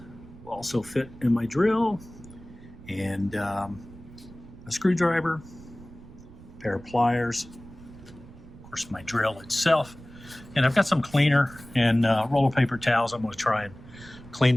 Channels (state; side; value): noise; right; rumble, 19 dB below the sound